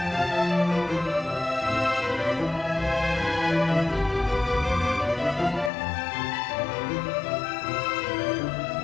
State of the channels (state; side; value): drops out; right; at 5.7 s